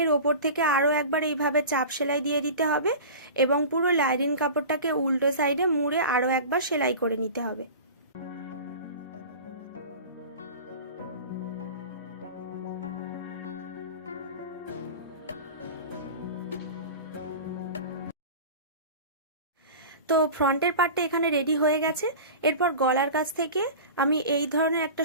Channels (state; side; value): inverted; both; correlation -0.34